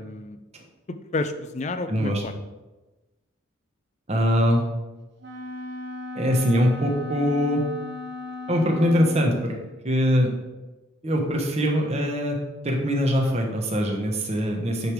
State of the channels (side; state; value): both; normal; correlation 0.70